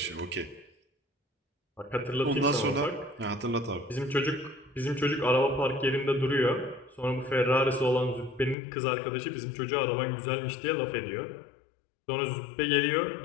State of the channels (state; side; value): drops out; right; at 8.6 s